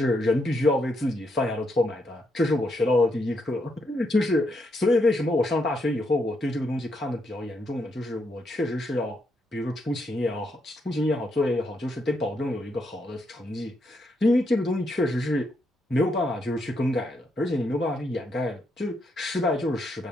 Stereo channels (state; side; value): normal; both; correlation 0.78